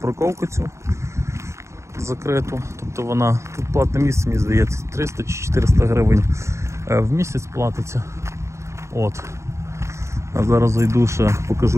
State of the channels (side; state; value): left; late; 0.14 ms